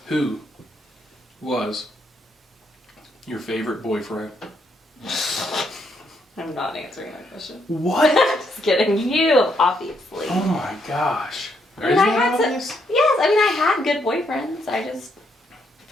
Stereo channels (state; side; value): normal; both; correlation 0.75